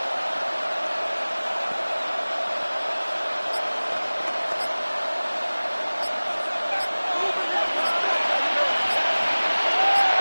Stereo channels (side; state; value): both; inverted; correlation -1.00